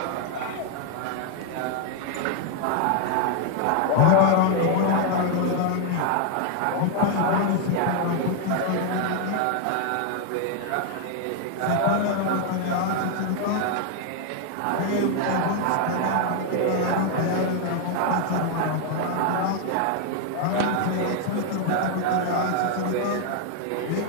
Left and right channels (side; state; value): both; different; correlation 0.00